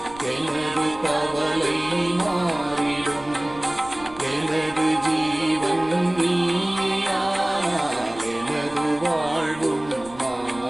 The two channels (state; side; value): noise; right; rumble, 21 dB below the sound